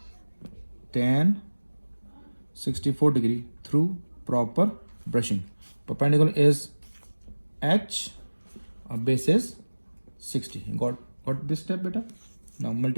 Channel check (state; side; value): inverted; both; correlation -1.00